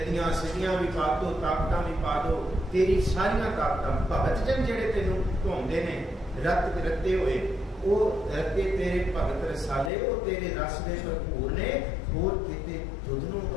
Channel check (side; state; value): right; drops out; at 9.9 s